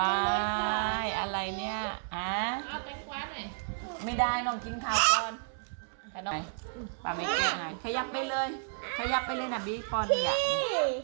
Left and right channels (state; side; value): silent; left; 57 dB below the other